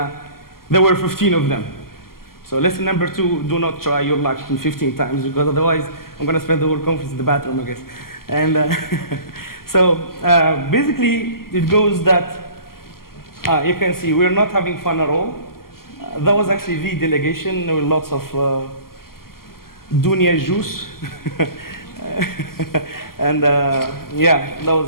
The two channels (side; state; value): right; late; 0.92 ms